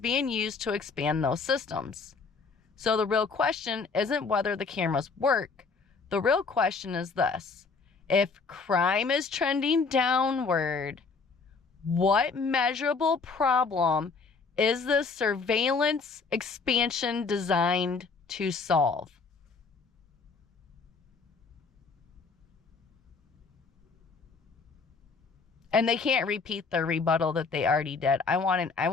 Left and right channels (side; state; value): right; quieter; 4.7 dB